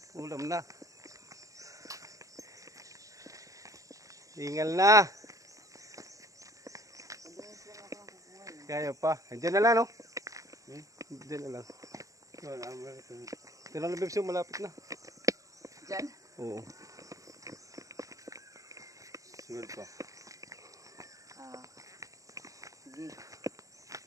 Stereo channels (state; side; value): late; left; 0.16 ms